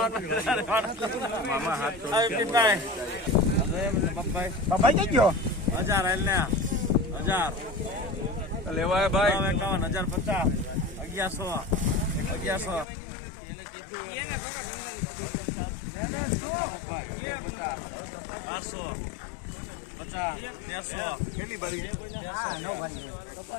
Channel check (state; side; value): drops out; right; at 12.9 s